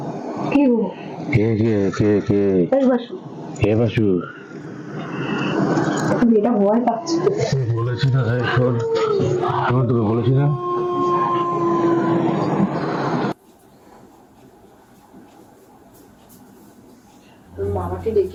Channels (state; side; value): identical; both; correlation 1.00